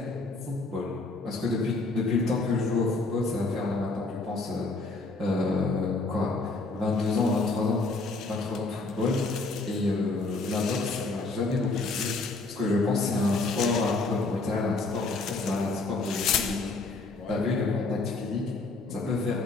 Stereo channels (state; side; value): quieter; right; 3.4 dB